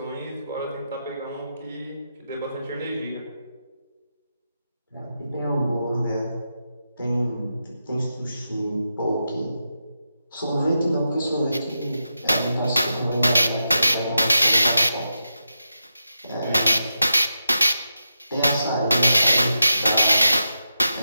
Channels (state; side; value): inverted; both; correlation -0.88